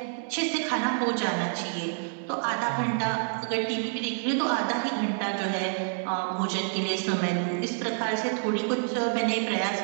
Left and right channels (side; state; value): left; silent; 59 dB below the other